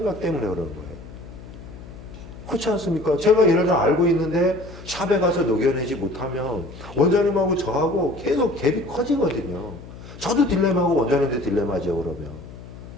때문에 그러는 거예요. 그렇지 않습니까? 제가 예를 들어 알고 있는데 샵에 가서 녹여내지 못하면 원장님하고 저하고 계속 갭이 커지거든요. 저도 딜레마고 원장님도 딜레마죠, 그러면.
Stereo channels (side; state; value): left; noise; hum, 15 dB below the sound